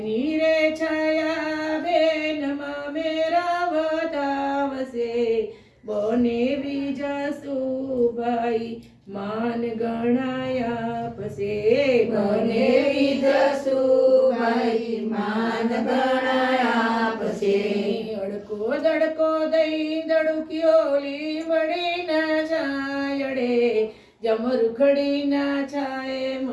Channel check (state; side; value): identical; both; correlation 1.00